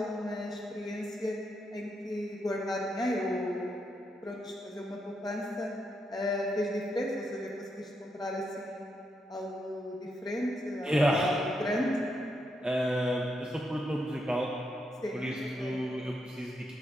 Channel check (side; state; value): both; normal; correlation 0.81